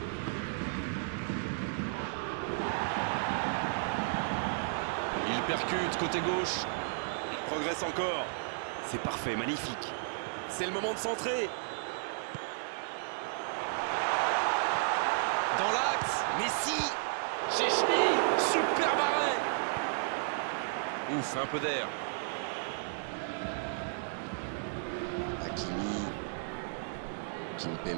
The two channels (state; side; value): silent; left; digital silence